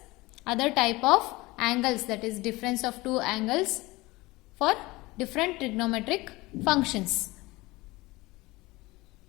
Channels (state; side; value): quieter; right; 21.3 dB